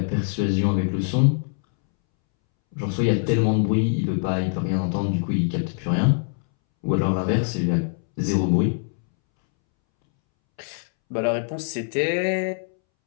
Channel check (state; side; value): silent; right; 63 dB below the other